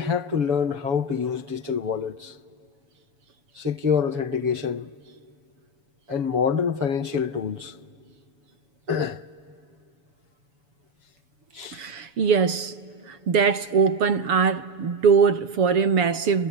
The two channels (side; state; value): left; late; 7.1 ms